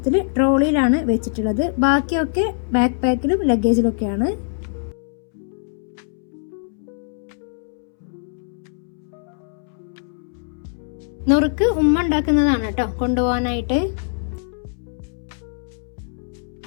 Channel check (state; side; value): silent; right; 64 dB below the other